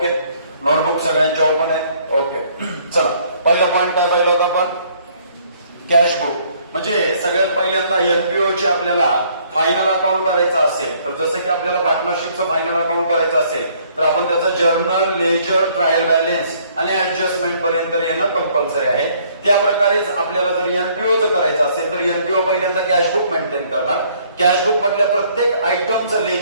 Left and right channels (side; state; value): both; inverted; correlation -0.63